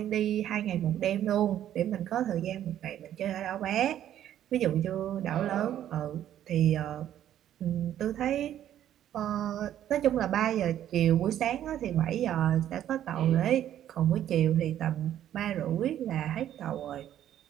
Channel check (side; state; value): left; quieter; 11.3 dB